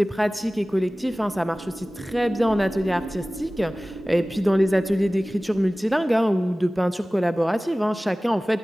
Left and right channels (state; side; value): normal; both; correlation 0.98